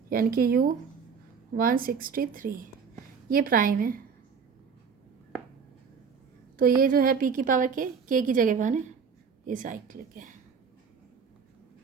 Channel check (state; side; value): quieter; left; 6.1 dB